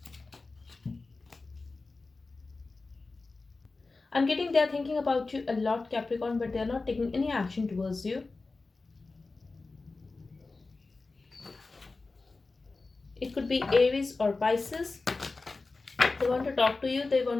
I'm getting they're thinking about you a lot, Capricorn, but they're not taking any action towards you. It could be Aries or Pisces. They want to talk to you, they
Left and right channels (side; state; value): right; quieter; 3.7 dB